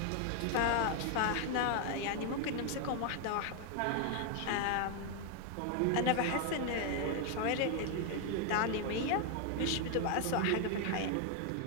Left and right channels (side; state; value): both; different; correlation 0.00